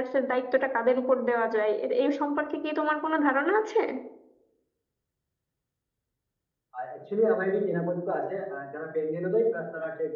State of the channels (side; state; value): both; identical; correlation 1.00